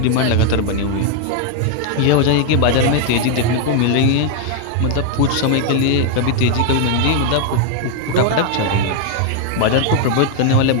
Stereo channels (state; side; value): different; both; correlation 0.00